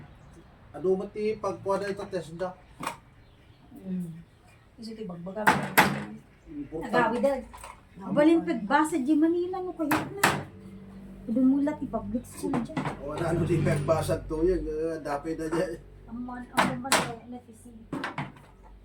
Ado mati pagkuha na ito Tesla. Kasi ito bagbaga. Nagawi dad. Balin pagbasa di Manila no kayo na. Dumulat ti public school dyan. Wala ano di pagbasag to yan. Dapay na dyan. Ang man na tisi.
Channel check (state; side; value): identical; both; correlation 1.00